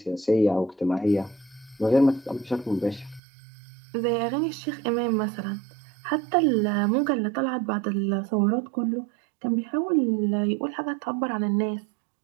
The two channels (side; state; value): left; drops out; at 3.2 s